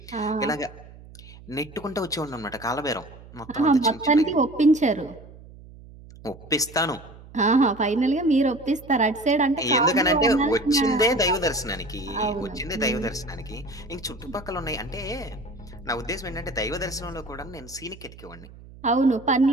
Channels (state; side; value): noise; right; hum, 19 dB below the sound